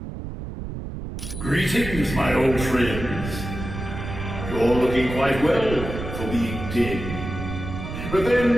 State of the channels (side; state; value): right; noise; rumble, 7 dB below the sound